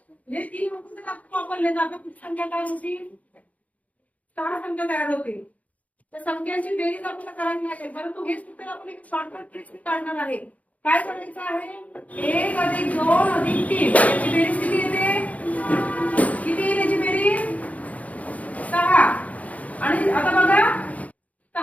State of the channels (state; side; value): late; right; 0.070 ms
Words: हे 3 अंक वापरले जातात. किती संख्या तयार होतील? 6 संख्या तयार होतील. तर संख्यांची बेरीज आपल्याला करायची आहे, परंतु हे सूत्र आपण एक शॉर्टकट ट्रिक काढणार आहे. काय करायचं आहे? 1 + 2 + 3 याची बेरीज किती येते? किती येईल याची बेरीज? 6. आणि आता बघा